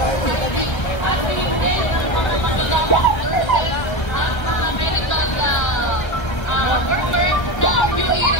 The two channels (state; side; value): late; right; 1.3 ms